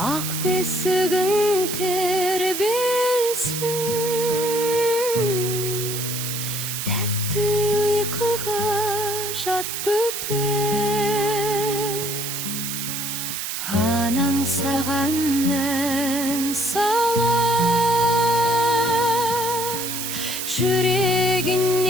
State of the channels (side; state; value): right; noise; hiss, 4 dB below the sound